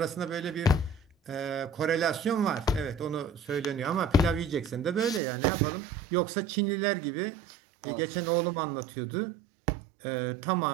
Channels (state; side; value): drops out; left; at 5.2 s